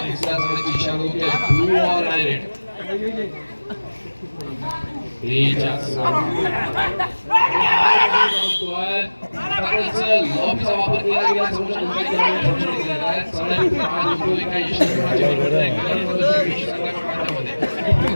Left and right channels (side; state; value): both; inverted; correlation -1.00